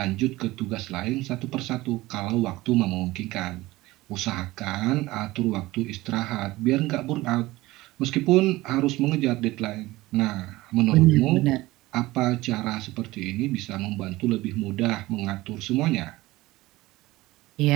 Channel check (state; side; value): quieter; left; 18.8 dB